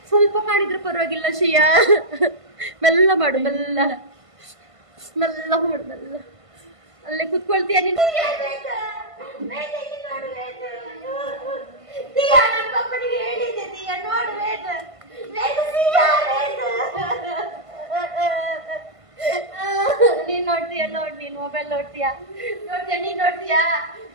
ಸ್ವಲ್ಪ ಕಾಣಿದ್ರೆ ಪರವಾಗಿಲ್ಲ ಶಿಯಾ ಮೆಲ್ಲ ಮಾಡು ಮೆಲ್ಲ ಮೆಲ್ಲ ಮಾಡು ಮೆಲ್ಲ ಅಲ್ಲೇ ಕುತ್ಕೊಳ್ತೀಯ ನೀನು ಹೇಳಿದೆ ದಿಯಾ ನೋಡು ನೀನ್ ನೋಡ್ತೀಯ ನೋಡ್ ನೀನ್ ಮೊಬೈಲ್ ನೋಡ್ತೀಯಾ ನೀನ್ ನೋಡ್ತೀಯಾ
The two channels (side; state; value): left; late; 1.5 ms